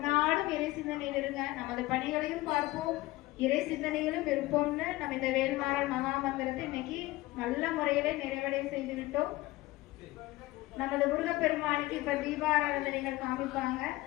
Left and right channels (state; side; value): quieter; right; 18.7 dB